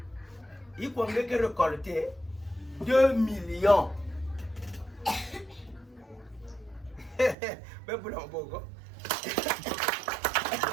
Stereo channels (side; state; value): left; drops out; at 7.4 s